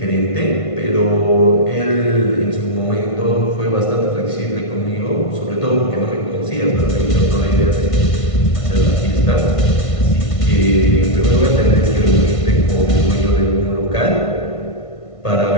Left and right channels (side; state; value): right; late; 1.5 ms